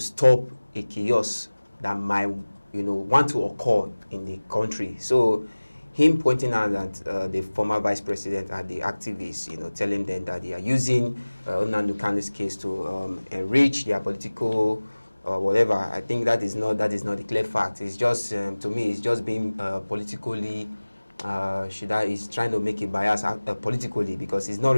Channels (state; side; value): inverted; both; correlation -1.00